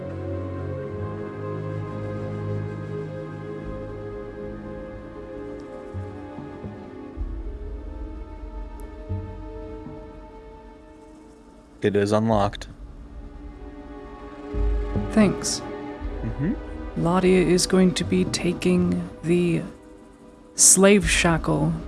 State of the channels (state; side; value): identical; both; correlation 1.00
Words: It is unlocked. Thanks. Mm-hmm. Ladia is going to be taking the slave shackle